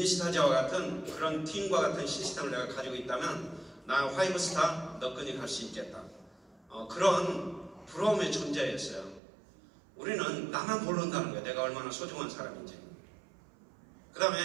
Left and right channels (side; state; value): left; drops out; at 9.2 s